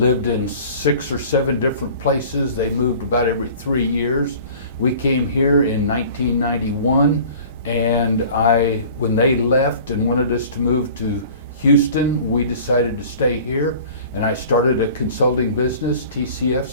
in 6 or 7 different places. They moved about every 3 years. We came here in 1991, and when they left and wanted us to move to Houston, we decided to stay here, and I started a consulting business, TCF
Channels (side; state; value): both; inverted; correlation -0.45